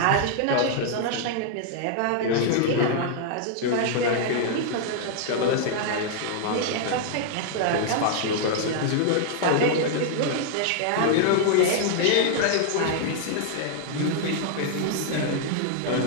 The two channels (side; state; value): both; different; correlation -0.01